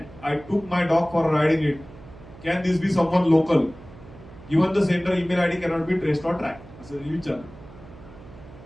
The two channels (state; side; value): noise; right; hum, 19 dB below the sound